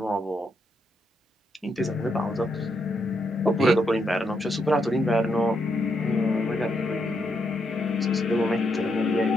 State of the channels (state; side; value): normal; both; correlation 0.79